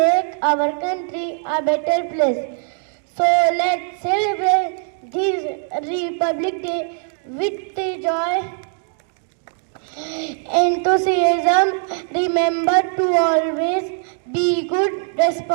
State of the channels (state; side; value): silent; left; 57 dB below the other